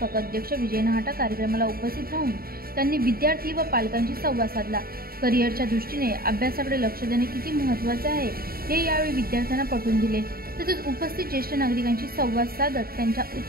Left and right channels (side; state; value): left; late; 0.43 ms